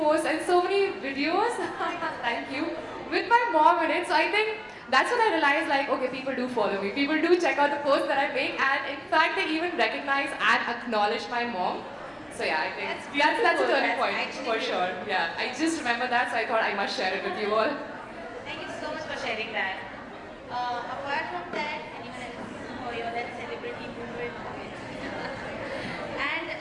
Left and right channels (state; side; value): identical; both; correlation 1.00